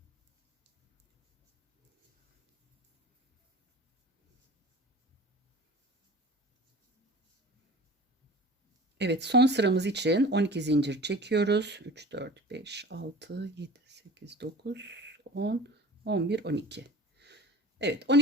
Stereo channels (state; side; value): normal; both; correlation 0.40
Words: Evet, son sıramız için 12 zincir çekiyoruz. 3, 4, 5, 6, 7, 8, 9, 10, 11, 12. Evet,